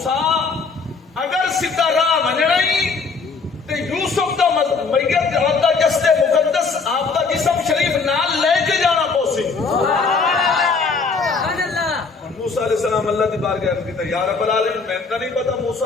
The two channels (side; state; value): right; quieter; 4.6 dB